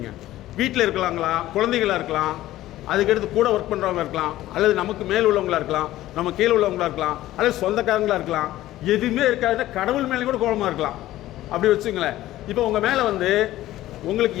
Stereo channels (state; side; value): quieter; right; 15.0 dB